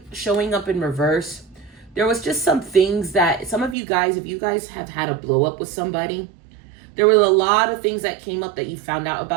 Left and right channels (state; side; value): drops out; left; at 3.8 s